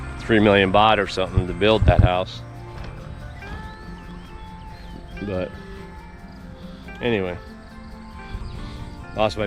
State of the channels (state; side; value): identical; both; correlation 1.00